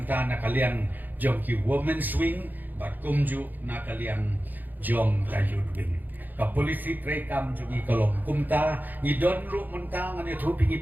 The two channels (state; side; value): late; left; 0.086 ms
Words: kalian jong ki women swing bat kumju na kalian jong ka youth wing ka polisi tre kam jong I kolong kumta ni don ru mentang ani thu